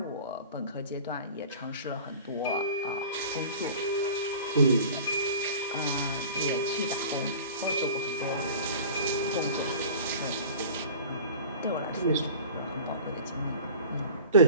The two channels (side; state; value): both; inverted; correlation -0.41